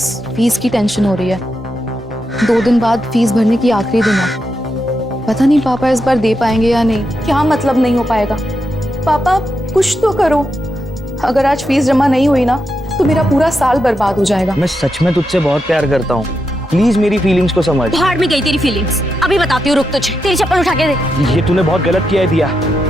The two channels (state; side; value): normal; both; correlation 0.85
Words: फीस की टेंशन हो रही है। 2 दिन बाद फीस भरने की आखिरी दिन है। पता नहीं पापा इस बार दे पाएंगे या नहीं। क्या मतलब नहीं हो पाएगा? पापा कुछ तो करो। अगर आज फीस जमा नहीं हुई ना तो मेरा पूरा साल बर्बाद हो जाएगा। मैं सच में तुझसे बहुत प्यार करता हूँ, प्लीज मेरी फीलिंग्स को समझ। भाड़ में गई तेरी फीलिंग्स, अभी बताती हूँ, रुक तुझे। तेरी चप्पल उठा के दे। ये तूने बहुत गलत किया है दिया,